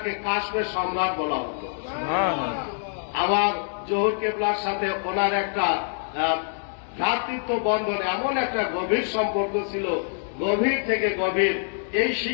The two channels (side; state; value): right; silent; digital silence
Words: কাশ্মীর সম্রাট বলা হতো। আমার জহুর কেবলার সাথে ওনার একটা ভ্রাতৃত্ব বন্ধন, এমন একটা গভীর সম্পর্ক ছিল, গভীর থেকে গভীর। এই